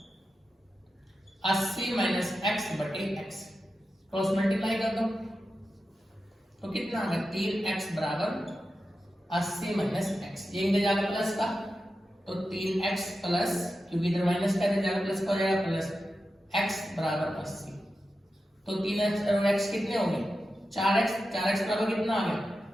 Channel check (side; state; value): both; normal; correlation 0.91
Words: 80 माइनस x बटे x। क्रॉस मल्टीप्लाई कर दो तो कितना आ गया 3x बराबर 80 माइनस x। ये इधर जाकर प्लस का, तो 3x प्लस, क्योंकि इधर माइनस का इधर जाकर प्लस का हो जाएगा, प्लस x बराबर 80। तो 3x और x कितने हो गए 4x, 4x बराबर कितना आ गया